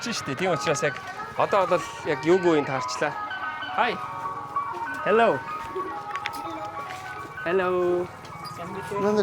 штэ. Тийм учраас яг одоо бол яг юугүй юм таарчлаа. Hi. Hello. Hello.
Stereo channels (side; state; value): both; identical; correlation 1.00